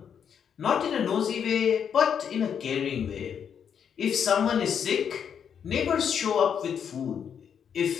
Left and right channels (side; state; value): right; quieter; 7.8 dB